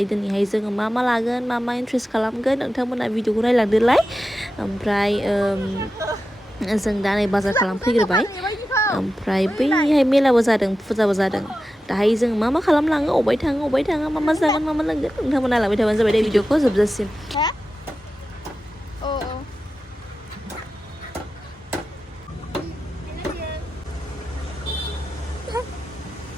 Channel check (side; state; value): both; normal; correlation 0.92